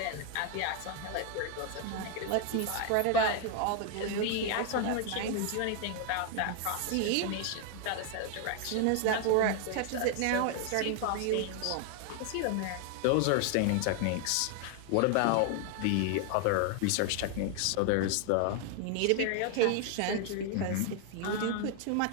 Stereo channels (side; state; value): both; different; correlation 0.00